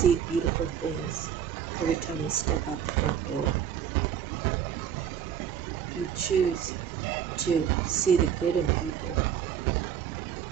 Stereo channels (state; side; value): quieter; left; 8.9 dB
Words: beautiful things every time you step out the front door. You choose to see the good in people.